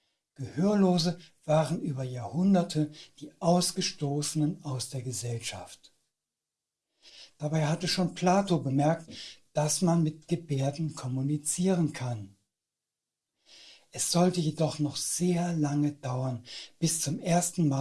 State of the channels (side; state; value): both; identical; correlation 1.00